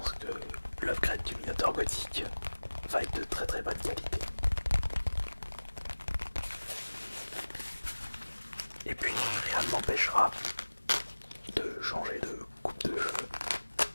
que l'upgrade du Minotaur gothique va être de très très bonne qualité. Et puis rien ne m'empêchera de changer de coupe de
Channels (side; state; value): both; inverted; correlation -1.00